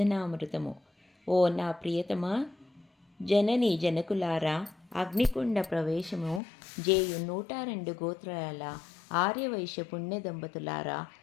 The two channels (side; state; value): right; drops out; at 6.4 s